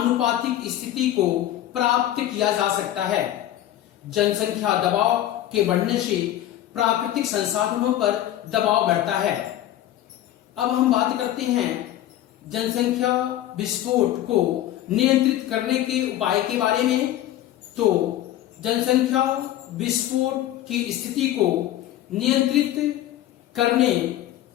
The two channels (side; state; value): right; quieter; 13.1 dB